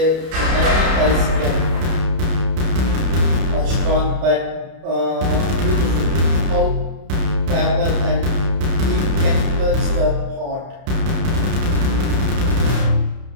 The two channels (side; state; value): left; late; 31 ms